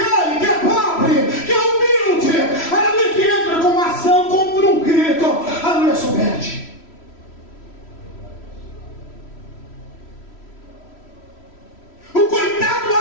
que é pobre, que é humilde, aleluia, que entra com uma ação contra um rico, aleluia, submete. O coitado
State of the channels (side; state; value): right; late; 3.1 ms